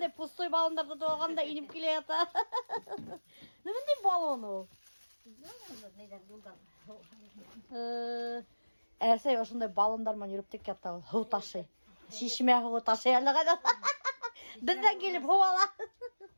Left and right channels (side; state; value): both; inverted; correlation -1.00